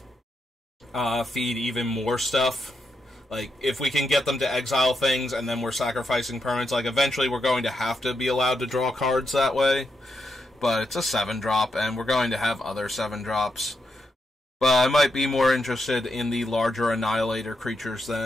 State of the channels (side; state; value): both; normal; correlation 0.83